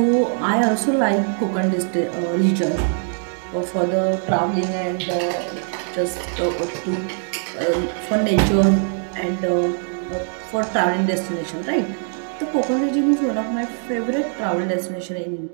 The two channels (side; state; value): left; silent; 56 dB below the other